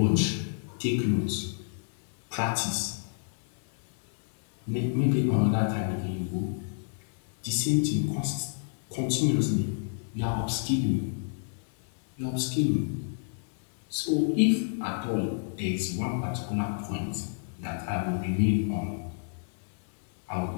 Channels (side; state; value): right; silent; digital silence